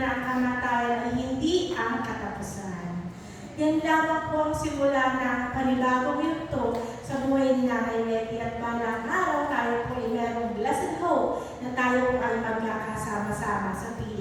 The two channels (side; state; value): both; identical; correlation 1.00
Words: na ang kamatayan ay hindi ang katapusan. Yan lamang po ang simula ng panibagong yugto sa buhay ni Nanay Letty at balang araw tayo po ay merong blessed hope na tayo ay magkakasama-sama sa